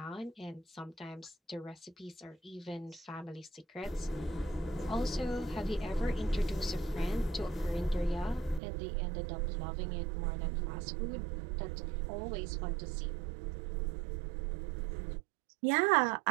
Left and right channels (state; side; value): drops out; left; at 8.6 s